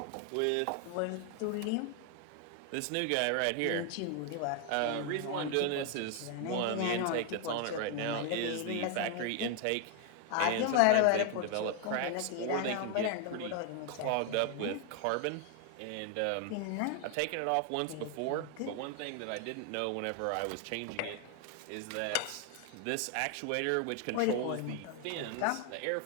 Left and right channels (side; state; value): both; different; correlation 0.00